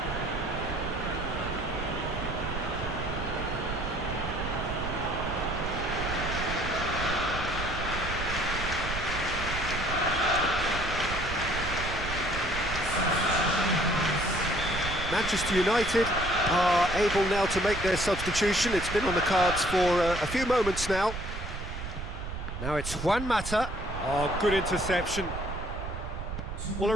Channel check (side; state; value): right; noise; rumble, 6 dB below the sound